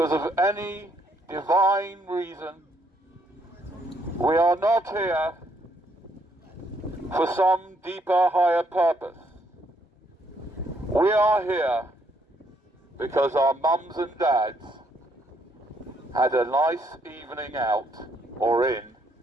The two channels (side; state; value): both; normal; correlation 0.71